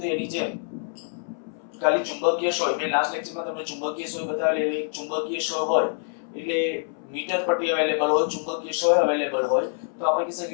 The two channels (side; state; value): right; silent; 61 dB below the other